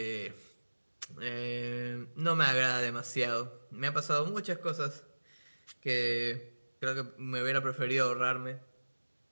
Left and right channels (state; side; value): inverted; both; correlation -1.00